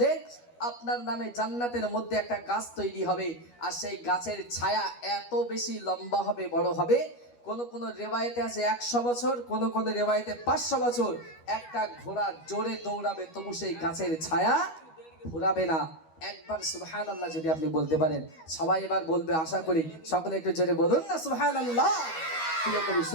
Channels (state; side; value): late; right; 12 ms